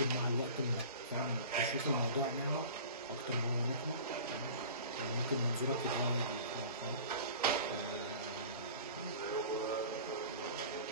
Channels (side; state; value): both; inverted; correlation -0.40